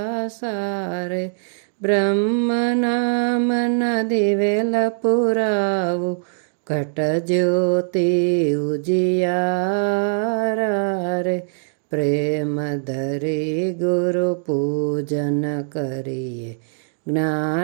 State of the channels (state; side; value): silent; left; 65 dB below the other